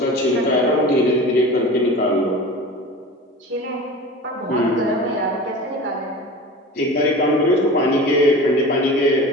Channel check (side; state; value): both; normal; correlation 0.35